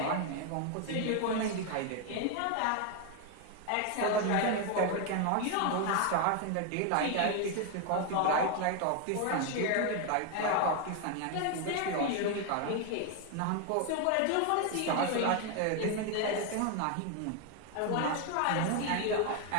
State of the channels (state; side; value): different; both; correlation 0.01